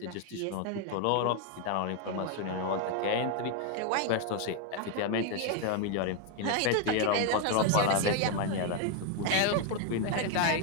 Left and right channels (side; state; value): both; different; correlation 0.01